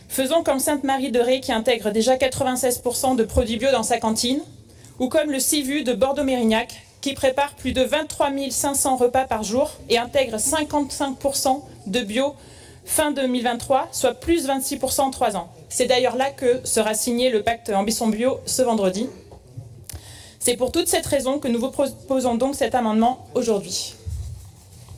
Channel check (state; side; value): identical; both; correlation 1.00